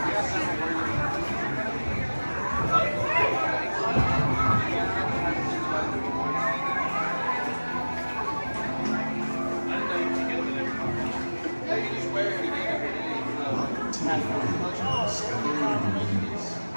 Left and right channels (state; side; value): inverted; both; correlation -1.00